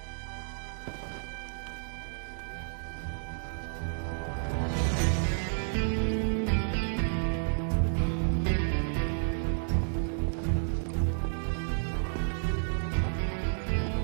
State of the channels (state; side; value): silent; left; 57 dB below the other